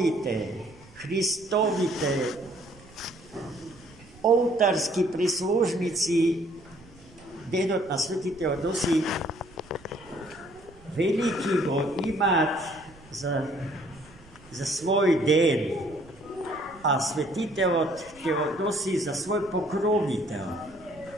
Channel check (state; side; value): noise; right; rumble, 24 dB below the sound